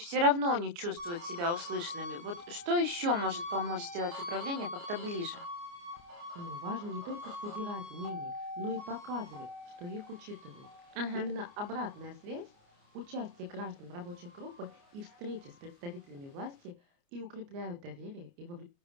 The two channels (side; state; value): left; late; 29 ms